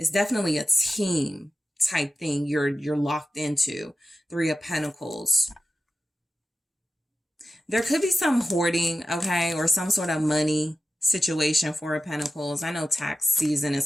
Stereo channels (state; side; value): normal; both; correlation 0.92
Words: definitely a team type thing you're locked into. Three of Pentacles. There could be some hoarding, okay, or some sort of money situation. Four of Pentacles. I know tax season